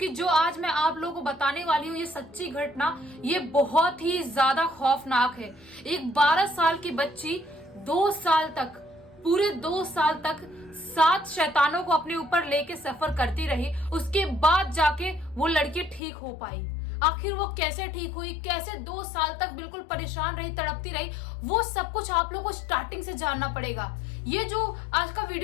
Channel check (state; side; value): drops out; right; at 16.0 s